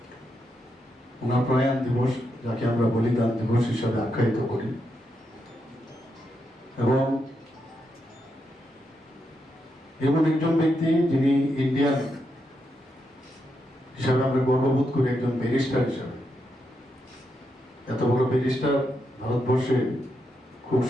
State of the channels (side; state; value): both; normal; correlation 0.83